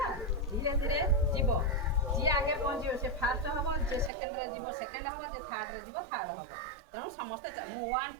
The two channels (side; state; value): left; drops out; at 4.1 s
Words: ଧୀରେ ଧୀରେ ଯିବ, ଯିଏ ଆଗେ ପହଞ୍ଚିବ ସେ ଫାର୍ଷ୍ଟ ହେବ, ଯିଏ ସେକେଣ୍ଡରେ ଯିବ ସେକେଣ୍ଡ ହେବ, ଯିଏ ଥାର୍ଡ଼ରେ ଯିବ ଥାର୍ଡ଼ ହେବ। ତେଣୁ ସମସ୍ତେ ମୁଁ 1